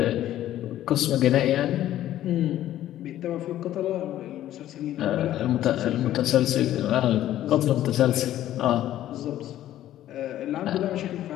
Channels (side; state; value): right; quieter; 12.9 dB